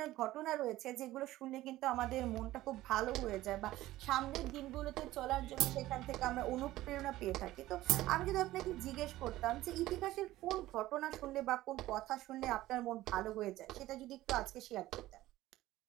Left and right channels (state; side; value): quieter; left; 16.0 dB